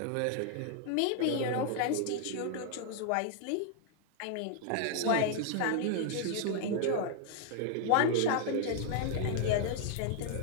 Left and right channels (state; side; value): different; both; correlation 0.00